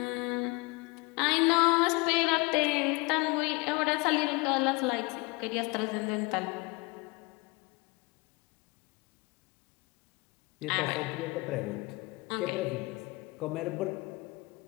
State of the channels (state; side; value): quieter; right; 26.4 dB